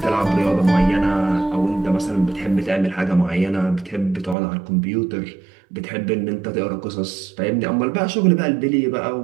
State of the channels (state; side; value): drops out; left; at 4.4 s